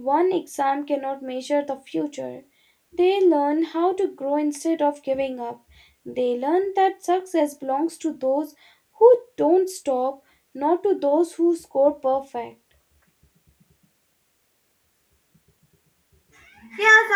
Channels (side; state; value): both; identical; correlation 1.00